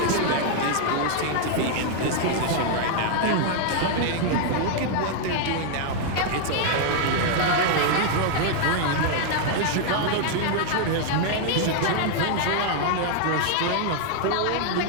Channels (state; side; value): different; both; correlation 0.00